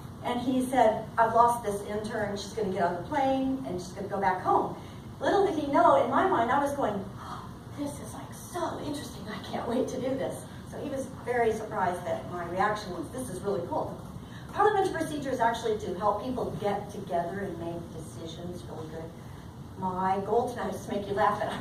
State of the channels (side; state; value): both; identical; correlation 1.00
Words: and he said, I've lost this intern. She's going to get on the plane and she's going to go back home. Little did he know, in my mind, I was going, oh, this is like so interesting. I can't wait to do this. So he was very surprised that my reaction was, this is really cool. Parliamentary procedure is actually to help people get together and make decisions really good. My goal tonight is to make you laugh at it.